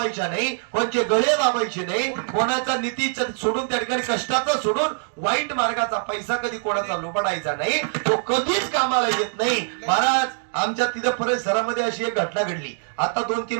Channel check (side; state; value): left; silent; 63 dB below the other